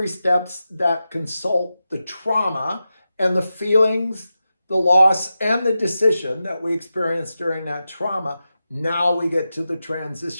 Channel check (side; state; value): both; inverted; correlation -0.92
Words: steps that consult the trauma and the feelings, the loss, and the decision that we experienced during that trauma. Now we get to the